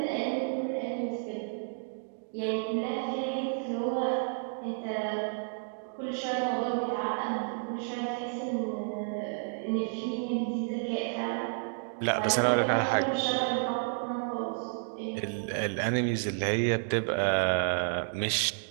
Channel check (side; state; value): left; silent; digital silence